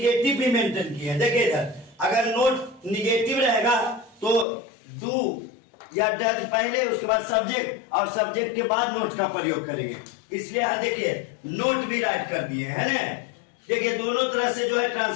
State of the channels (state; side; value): drops out; right; at 4.5 s